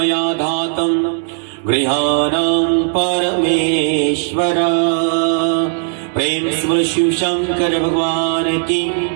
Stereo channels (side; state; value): left; silent; digital silence